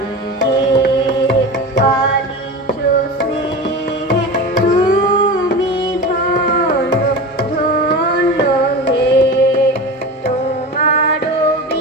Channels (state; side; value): normal; both; correlation 0.29